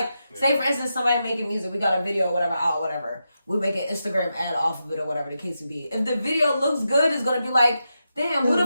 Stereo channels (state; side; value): inverted; both; correlation -0.87